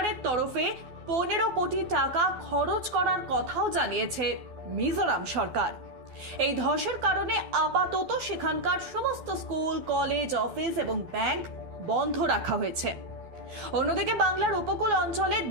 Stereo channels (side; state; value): left; late; 12 ms